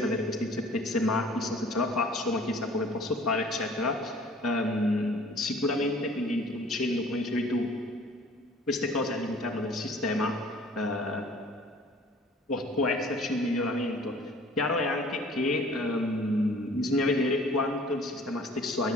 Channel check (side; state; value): both; normal; correlation 0.51